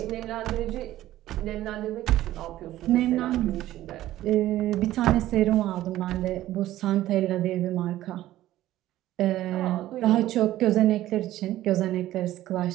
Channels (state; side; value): quieter; left; 14.5 dB